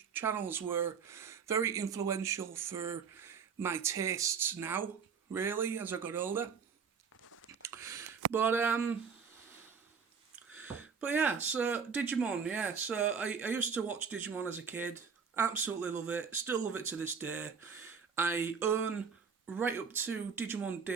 channels were very influential for my tastes now, really, as I got older. But yeah, so Digimon, yeah. So I used to watch Digimon as a kid. Absolutely love it. Still love it to this day. I own right up to Digimon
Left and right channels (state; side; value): quieter; left; 6.1 dB